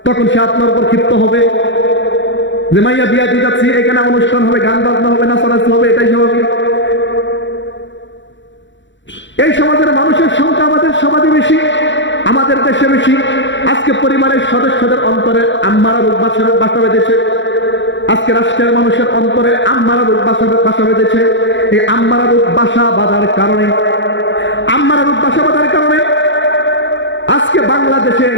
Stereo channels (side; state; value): right; late; 0.54 ms